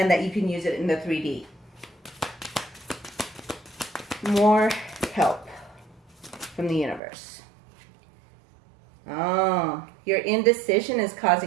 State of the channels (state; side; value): drops out; left; at 7.0 s